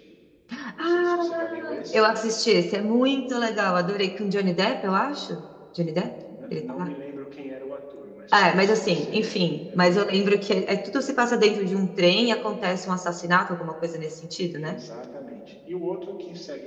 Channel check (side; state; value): both; identical; correlation 1.00